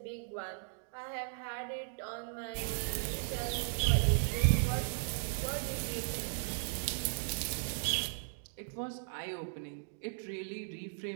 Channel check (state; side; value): silent; left; digital silence